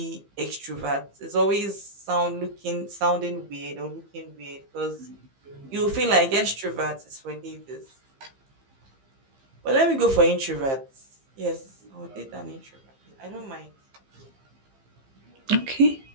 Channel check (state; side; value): late; left; 15 ms